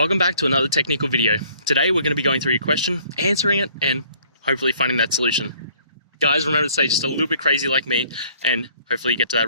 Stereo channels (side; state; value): both; inverted; correlation -0.58